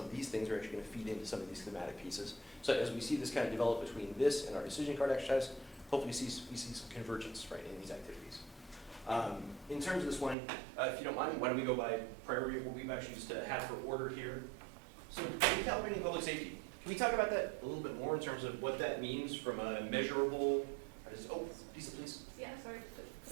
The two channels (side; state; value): left; drops out; at 10.4 s